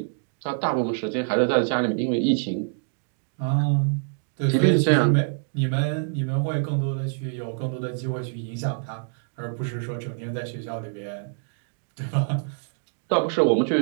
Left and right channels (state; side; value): silent; left; digital silence